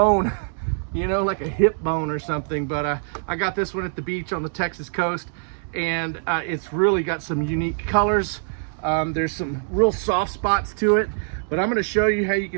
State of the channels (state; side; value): silent; left; 63 dB below the other